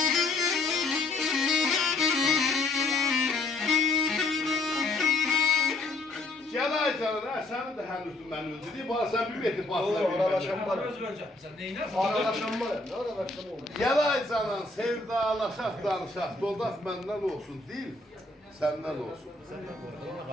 Gel Aycan'a, sen de henüz ben öldü. Bana sen bir beti basla. Aralaşan var. Söz vereceğim. Sen neyine? Aralaşan var. Ne aralaşan olur? Gel Aycan'a, sevdalaşaq, danışaq. Doldaq məndən olsun, değil, səndən olsun.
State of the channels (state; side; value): quieter; right; 3.2 dB